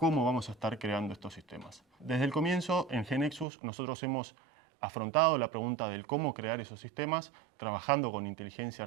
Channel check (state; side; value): drops out; left; at 3.5 s